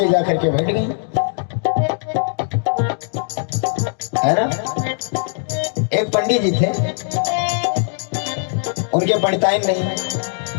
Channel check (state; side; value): silent; right; digital silence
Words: जाकर के बैठ गई, है ना। एक पंडित जी थे, उनके पंडिताइन नहीं,